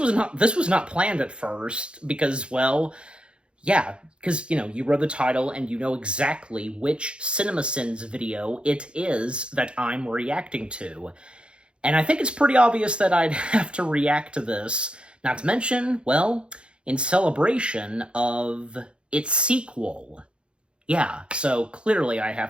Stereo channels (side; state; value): left; late; 0.056 ms